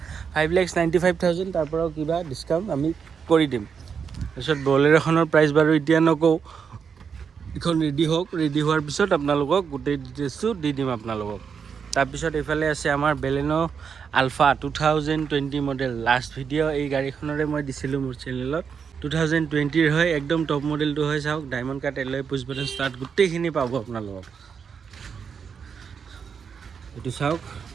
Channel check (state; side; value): quieter; left; 6.5 dB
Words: 5,95,000 তাৰ পৰাও কিবা ডিছকাউণ্ট আমি কৰি দিম তাৰপিছত বলেৰ'খনৰ প্ৰাইচ বাৰু এতিয়া নকওঁ এইখন ৰেডি হওক ৰেডি হোৱাৰ পিছত আপোনালোকক গোটেই ডিটেইলছটো দি দিম আপোনালোকক তাৰপিছত এইফালে আছে আমাৰ Baleno Alpha 2020 model last video' এই গাড়ীখনৰে মই দিছিলোঁ মোৰ চেনেলত 2020ৰ হয় একদম টপ মডেলটো হয় চাওক diamond cut alloy push button start গোটেইখিনি পাব আপোনালোকক এইটো চাওক